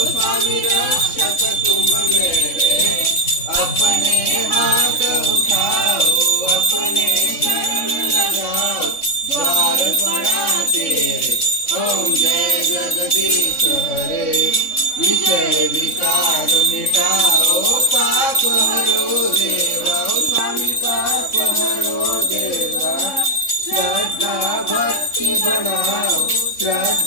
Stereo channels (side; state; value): right; late; 3.6 ms